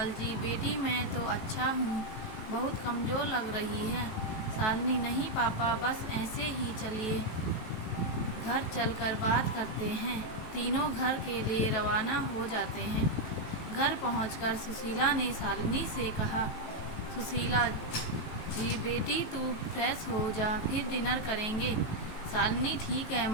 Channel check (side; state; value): right; late; 18 ms